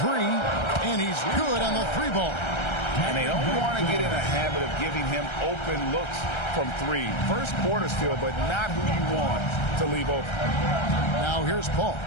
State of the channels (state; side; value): late; right; 1.3 ms